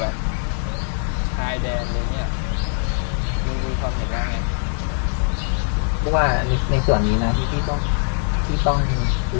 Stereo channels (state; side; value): silent; right; 56 dB below the other